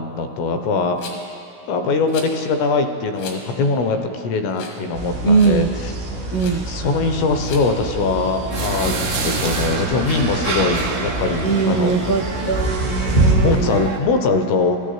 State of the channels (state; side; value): late; right; 16 ms